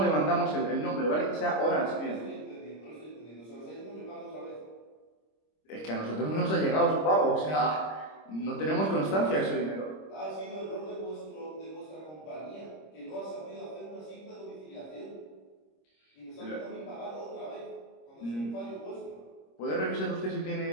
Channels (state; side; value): late; right; 26 ms